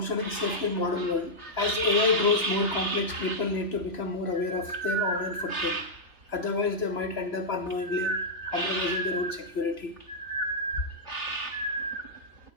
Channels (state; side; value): late; right; 3.0 ms